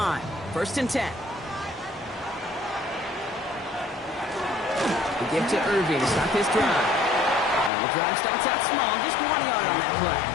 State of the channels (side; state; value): right; drops out; at 7.7 s